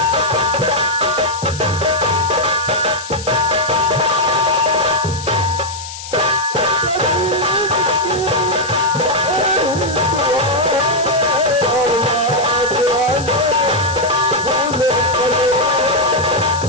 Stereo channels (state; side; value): noise; left; hiss, 12 dB below the sound